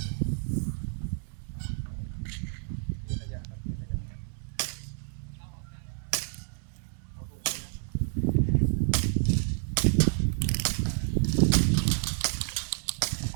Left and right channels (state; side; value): silent; left; 58 dB below the other